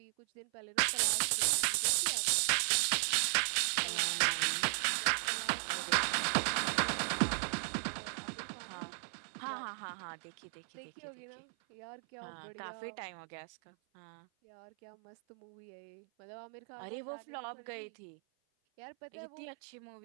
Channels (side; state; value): left; silent; 53 dB below the other